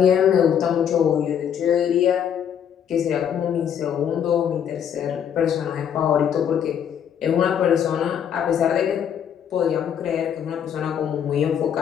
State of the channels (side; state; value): right; quieter; 8.7 dB